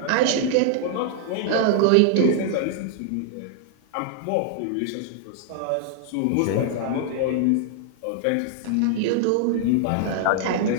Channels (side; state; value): both; different; correlation 0.00